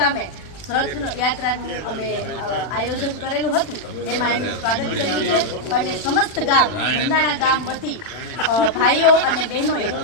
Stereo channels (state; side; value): late; right; 40 ms